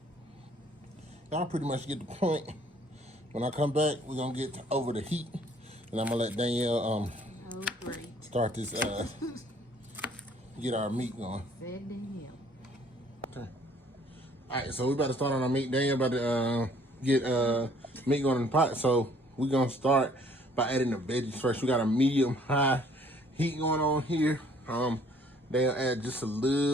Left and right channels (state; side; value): normal; both; correlation 0.59